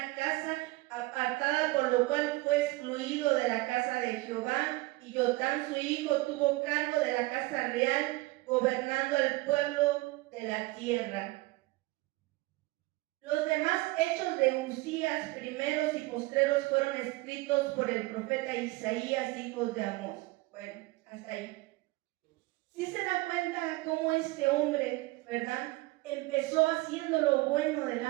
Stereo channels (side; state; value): left; quieter; 21.1 dB